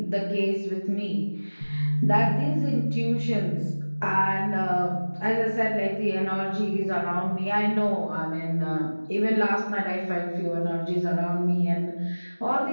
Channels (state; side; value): inverted; both; correlation -1.00